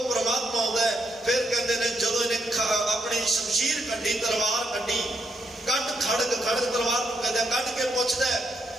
ਪਰਮਾਤਮਾ ਆਉਂਦਾ ਹੈ। ਫਿਰ ਕਹਿੰਦੇ ਨੇ ਜਦੋਂ ਇਹਨੇ ਆਪਣੀ ਸ਼ਮਸ਼ੀਰ ਕੱਢੀ, ਤਲਵਾਰ ਕੱਢੀ, ਖੜਗ ਤਲਵਾਰ ਨੂੰ ਕਹਿੰਦੇ ਕੱਢ ਕੇ ਪੁੱਛਦਾ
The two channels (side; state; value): both; normal; correlation 0.78